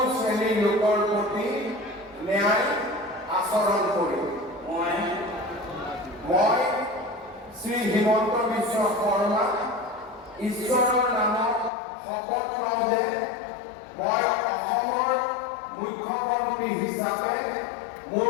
শ্ৰেণীৰ লোকৰ প্ৰতি ন্যায় আচৰণ কৰিম। মই শ্ৰী হিমন্ত বিশ্ব শৰ্মা ঈশ্বৰৰ নামত শপত লওঁ যে মই অসমৰ মুখ্যমন্ত্ৰী হিচাপে মোৰ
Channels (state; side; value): drops out; right; at 11.7 s